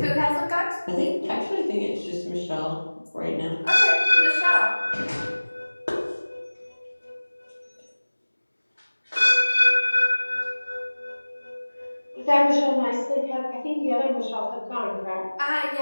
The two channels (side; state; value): both; inverted; correlation -1.00